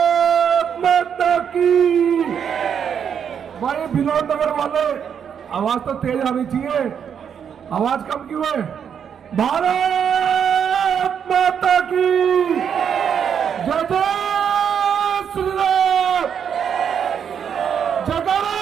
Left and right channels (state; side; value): quieter; left; 7.8 dB